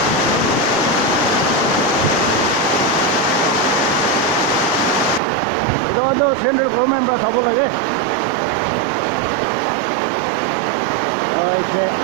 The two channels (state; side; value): drops out; left; at 5.2 s